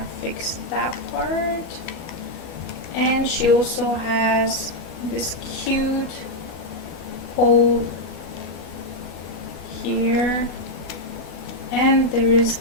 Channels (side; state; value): right; late; 12 ms